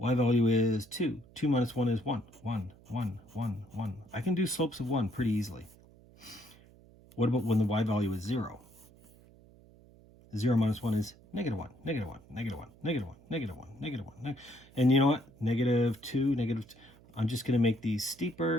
value is 2. 2 minus 1 is 1. 1, 1, 1, 1. I can do slopes of 1 pretty easily. What about when the y value is 0? 0 minus 1 is negative 1, negative 1, negative 1, negative 1, negative 1, negative 1. And you know what? Negative 2, negative 2. I'm just going to make these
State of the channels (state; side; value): noise; right; hum, 25 dB below the sound